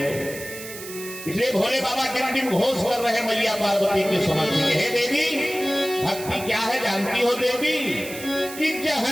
इसलिए भोले बाबा टिम घोष कर रहे मैया पार्वती के समझ में, हे देवी भक्ति क्या है जानती हो देवी? कि जह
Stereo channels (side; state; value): right; noise; hiss, 12 dB below the sound